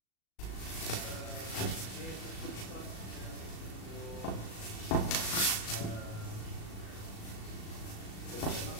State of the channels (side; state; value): right; late; 37 ms